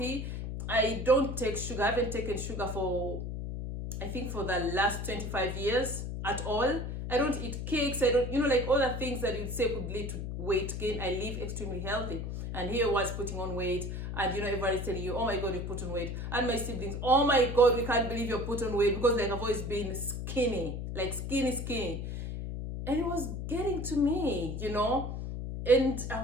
I don't take sugar. I haven't taken sugar for, I think, for the last 25 years at all. I don't eat cakes. I don't, like all the things that you'd say could lead to weight gain. I live extremely healthy. And here I was putting on weight. And, everybody's telling you, oh my God, you put on weight. And my siblings, oh my God, we can't believe you put on weight because I've always been skinny, like skinny. And it was getting to me, and I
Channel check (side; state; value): left; noise; hum, 5 dB below the sound